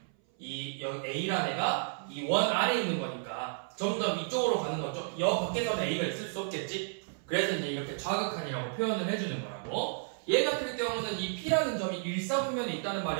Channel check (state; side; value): silent; left; 56 dB below the other